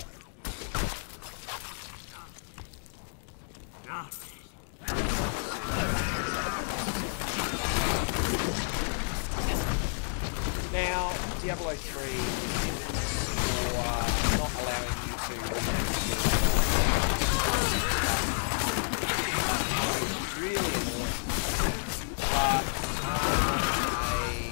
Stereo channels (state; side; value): silent; right; digital silence